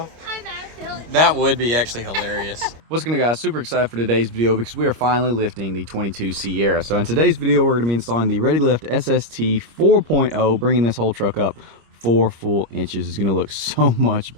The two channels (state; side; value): late; left; 25 ms